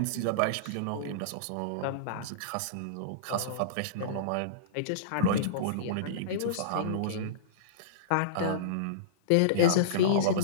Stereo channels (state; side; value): different; both; correlation -0.04